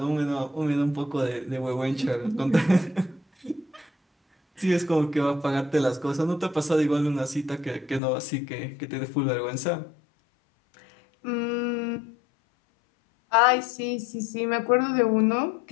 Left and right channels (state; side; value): drops out; right; at 8.0 s